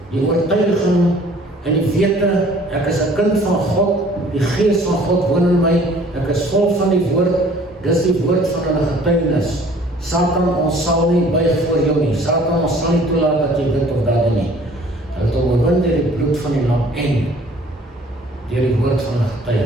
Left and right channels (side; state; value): both; normal; correlation 0.54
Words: die oortuiging en die wete, ek is 'n kind van God, die gees van God woon in my, ek is vol van die woord, dis die woord van hulle getuienis. Satan, ons sal nie buig voor jou nie. Satan, ons sal nie toelaat dat jy dit of dat doen nie. Hulle het hom oorwin deur die bloed van die lam en deur die woord van hulle